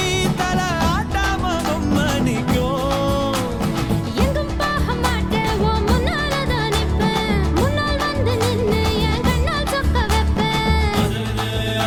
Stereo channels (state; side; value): identical; both; correlation 1.00